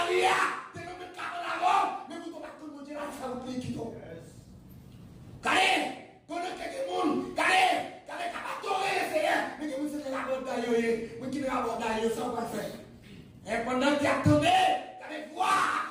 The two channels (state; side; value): identical; both; correlation 1.00